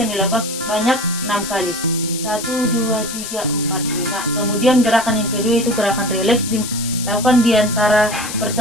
dilakukan sebanyak 6 kali. 1, 2, 3, 4, 5. Kemudian gerakan yang kedua itu gerakan rileks, dilakukan di antara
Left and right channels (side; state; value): left; noise; hiss, 8 dB below the sound